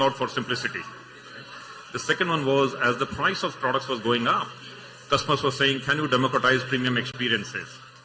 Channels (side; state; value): both; identical; correlation 1.00